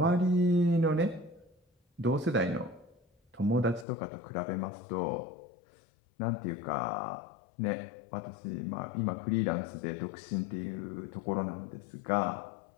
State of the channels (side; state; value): right; drops out; at 3.9 s